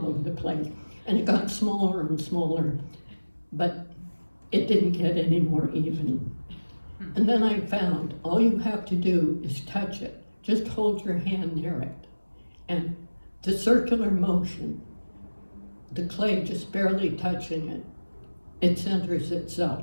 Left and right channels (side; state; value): both; inverted; correlation -1.00